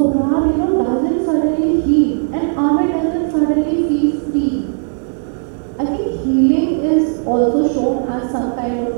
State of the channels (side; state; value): left; silent; 69 dB below the other